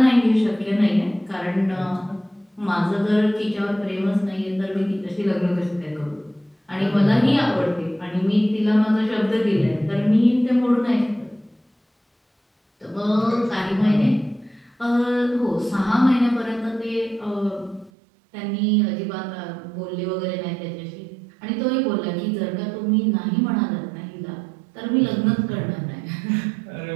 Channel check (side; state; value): left; drops out; at 17.9 s